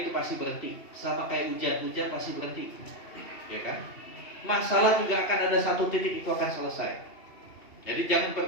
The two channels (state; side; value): late; right; 2.7 ms